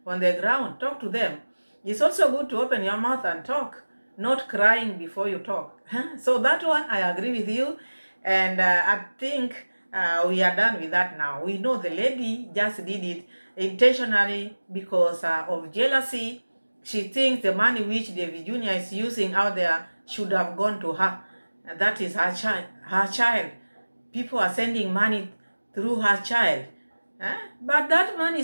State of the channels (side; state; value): both; inverted; correlation -1.00